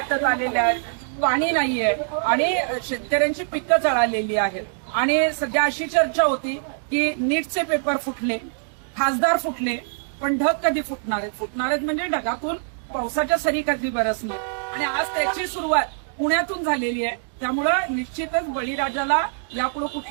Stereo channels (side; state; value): left; silent; digital silence